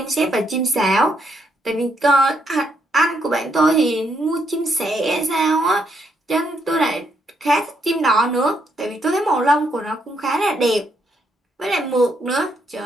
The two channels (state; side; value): normal; both; correlation 0.75